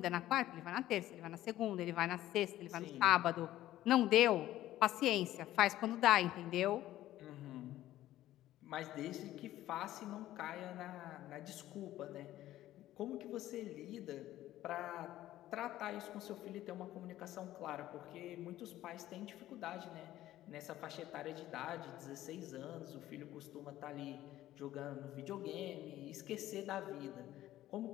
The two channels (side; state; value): right; quieter; 14.2 dB